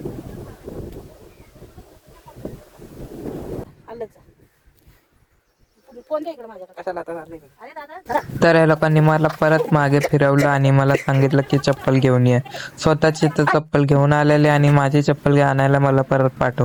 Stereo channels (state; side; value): identical; both; correlation 1.00